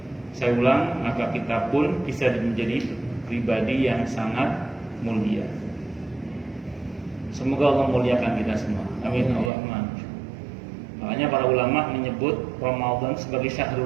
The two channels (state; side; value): drops out; left; at 9.5 s